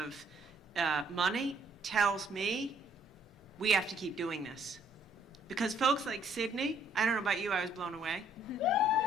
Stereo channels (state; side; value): normal; both; correlation 0.65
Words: money tells me we have to keep doing this. Because folks like Sydney, I don't know about you, I was blown away.